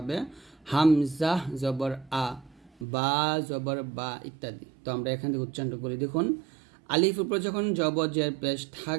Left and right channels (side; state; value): left; drops out; at 2.9 s